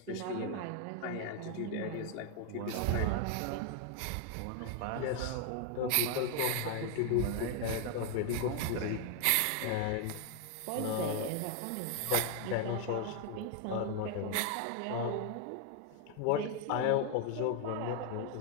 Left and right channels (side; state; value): both; different; correlation 0.00